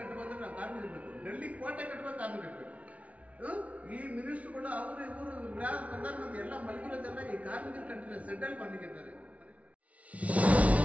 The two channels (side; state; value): left; late; 0.066 ms